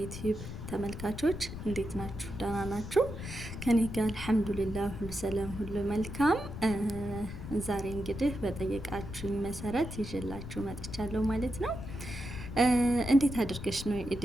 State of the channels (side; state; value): left; noise; rumble, 9 dB below the sound